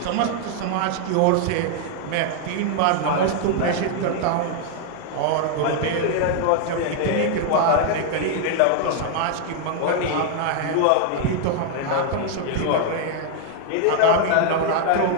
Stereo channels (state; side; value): different; both; correlation 0.00